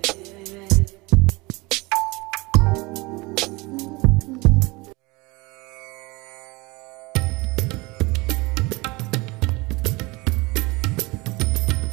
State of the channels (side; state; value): left; quieter; 24.1 dB